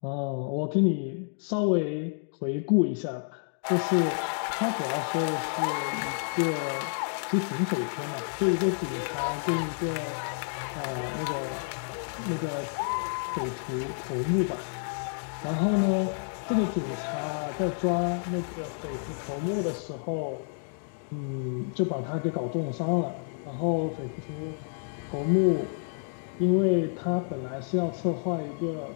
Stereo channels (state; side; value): silent; right; digital silence